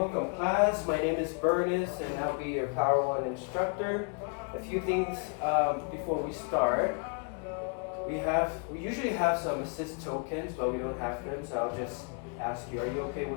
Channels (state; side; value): quieter; right; 37.3 dB